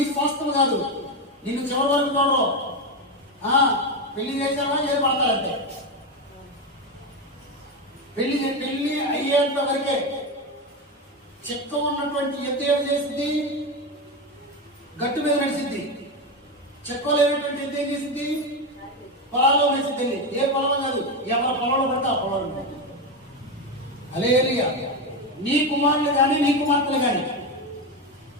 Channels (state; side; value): normal; both; correlation 0.13